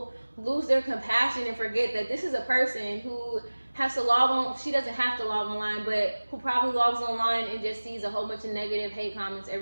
lose their compassion and forget that this is a person who has to log on. She doesn't have to log online, but who probably logs online and just sees a whole bunch of negative hate comments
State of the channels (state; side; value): inverted; both; correlation -1.00